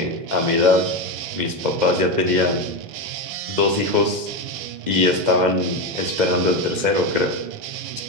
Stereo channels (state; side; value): late; left; 2.1 ms